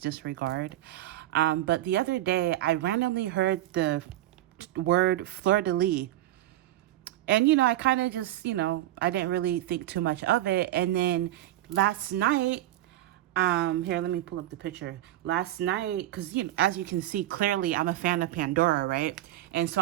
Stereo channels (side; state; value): left; quieter; 14.2 dB